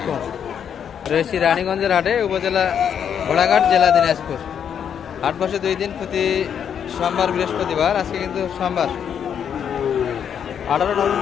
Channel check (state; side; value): quieter; right; 8.2 dB